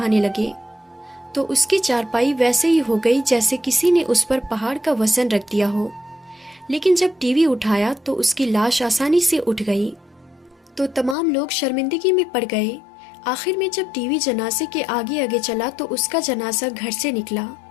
लगे तो उसकी चारपाई वैसे ही हो गई जैसे किसी ने उस पर पहाड़ का वजन रख दिया हो। लेकिन जब टीवी उठाया तो उसकी लाश आसानी से उठ गई तो तमाम लोग शर्मिंदगी में पड़ गए। आखिर में जब टीवी जनाजे के आगे आगे चला तो उसका जनाजा घर से निकला।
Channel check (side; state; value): right; drops out; at 11.2 s